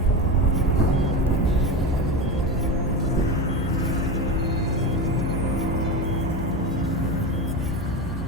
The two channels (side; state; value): both; normal; correlation 0.22